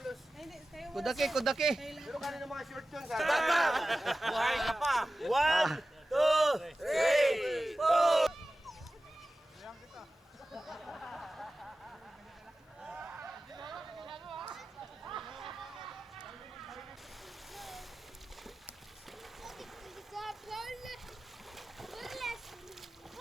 Kudaki. Pero kanina mga short yun. Buhay ka pa. 1, 2, 3, 4.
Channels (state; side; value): normal; both; correlation 0.95